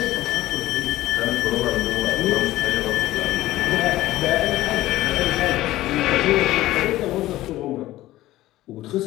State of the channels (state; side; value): quieter; right; 15.9 dB